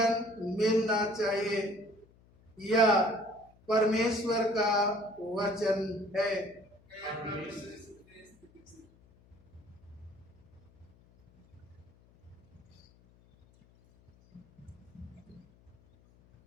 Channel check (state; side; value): noise; left; hum, 28 dB below the sound